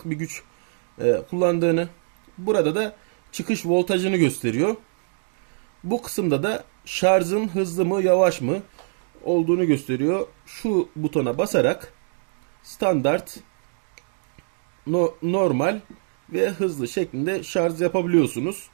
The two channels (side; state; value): left; silent; 63 dB below the other